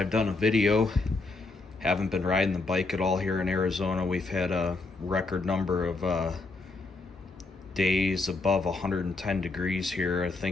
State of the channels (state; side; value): quieter; right; 3.5 dB